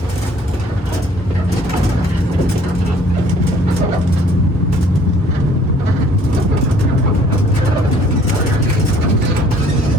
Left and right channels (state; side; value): normal; both; correlation 0.57